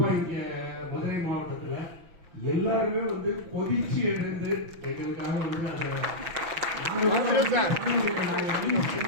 இங்க மதுரை மாவட்டத்துல எல்லாருமே வந்து கொதிச்சு எழுந்து எங்களுக்காக வந்து அதை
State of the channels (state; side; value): late; left; 6.0 ms